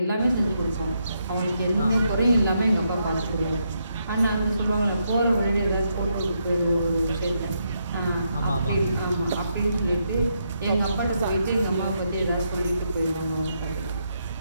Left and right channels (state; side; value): inverted; both; correlation -0.79